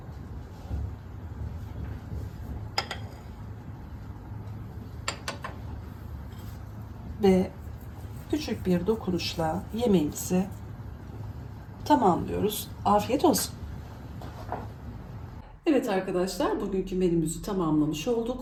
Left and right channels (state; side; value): identical; both; correlation 1.00